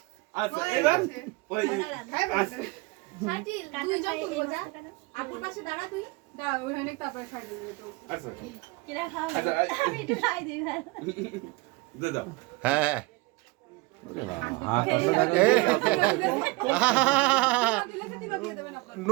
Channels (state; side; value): quieter; left; 23.4 dB